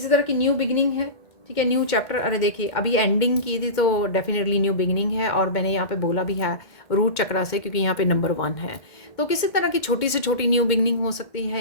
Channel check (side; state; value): right; late; 2.1 ms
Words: तरह की न्यू बिगिनिंग है, ठीक है, न्यू चैप्टर। अरे देखिए, अभी एंडिंग की थी तो डेफिनेटली न्यू बिगिनिंग है, और मैंने यहाँ पे बोला भी है रूट चक्रा से, क्योंकि यहाँ पे नंबर 1 है। तो किसी तरह की छोटी से छोटी न्यू बिगिनिंग हो सकती